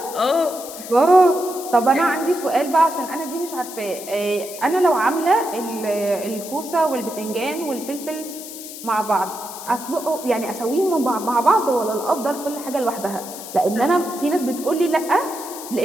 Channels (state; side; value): noise; left; hiss, 12 dB below the sound